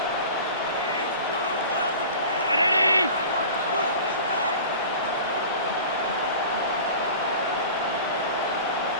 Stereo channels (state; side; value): inverted; both; correlation -0.38